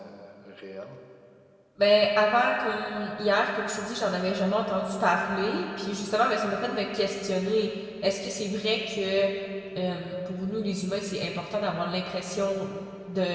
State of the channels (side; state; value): both; identical; correlation 1.00